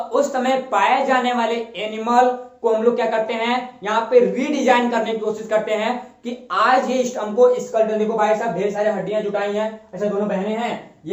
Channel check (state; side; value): identical; both; correlation 1.00